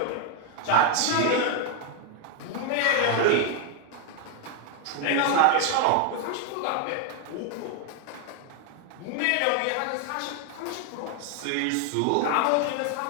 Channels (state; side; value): different; both; correlation 0.01